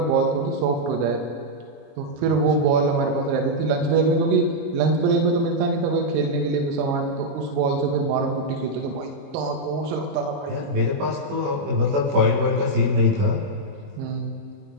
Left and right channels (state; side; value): late; left; 21 ms